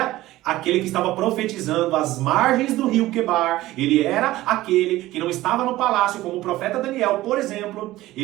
aquele que estava profetizando às margens do rio Quebar. Ele era aquele que não estava no palácio, como o profeta Daniel, por exemplo.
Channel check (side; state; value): left; quieter; 16.6 dB